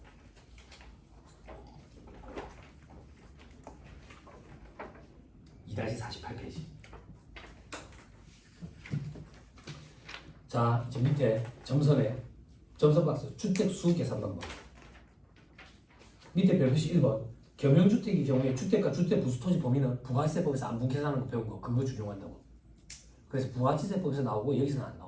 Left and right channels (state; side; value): identical; both; correlation 1.00